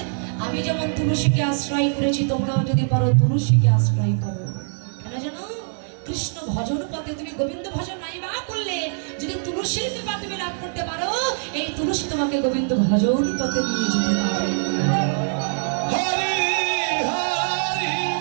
আমি যেমন তুলসীকে আশ্রয় করেছি তোমরাও যদি পারো তুলসীকে আশ্রয় করো। কেন জানো? কৃষ্ণ ভজন পথে তুমি গোবিন্দ ভজন নাই বা করলে যদি তুলসীর কৃপা তুমি লাভ করতে পারো, এই তুলসী তোমাকে গোবিন্দ ভজন পথে নিয়ে যেতে পারে।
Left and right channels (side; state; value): left; silent; 59 dB below the other